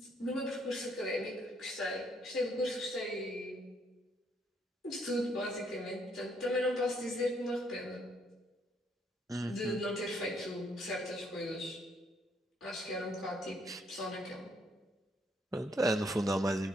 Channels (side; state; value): both; normal; correlation 0.70